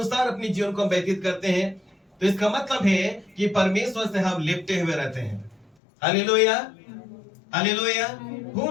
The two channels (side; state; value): right; drops out; at 5.7 s